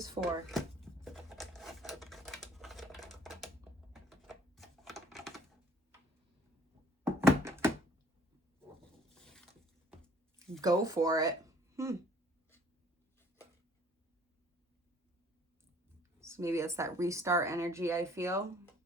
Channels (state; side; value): normal; both; correlation 0.57